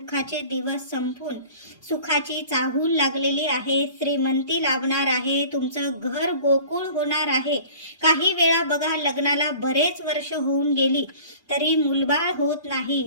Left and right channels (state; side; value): inverted; both; correlation -0.44